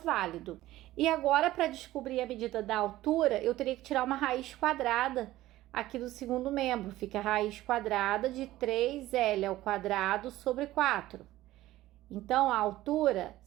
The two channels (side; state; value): left; quieter; 15.8 dB